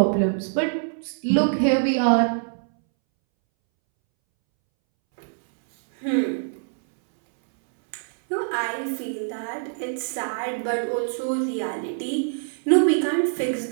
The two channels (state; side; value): silent; left; 62 dB below the other